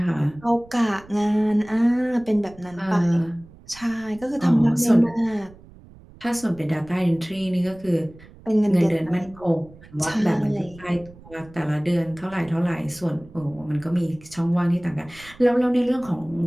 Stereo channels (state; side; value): noise; right; rumble, 22 dB below the sound